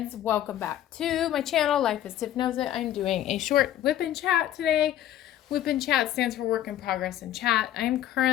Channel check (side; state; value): right; quieter; 12.1 dB